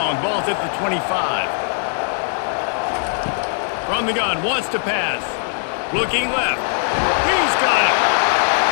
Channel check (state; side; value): silent; right; 62 dB below the other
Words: Ball's at the 25. From the gun, wants to pass. Looking left. He's got it.